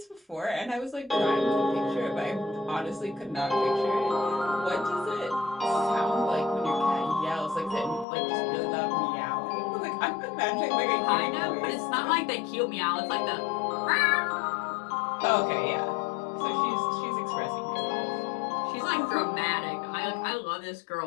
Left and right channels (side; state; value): right; drops out; at 8.1 s